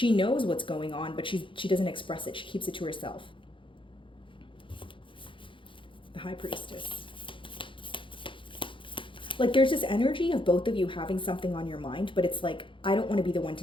knows what's going on, but she doesn't express it. She keeps it to herself. The High Priestess. Like there's this energy of both of you having something on your mind, but it's like, I don't want to be the one to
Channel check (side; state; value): right; late; 0.25 ms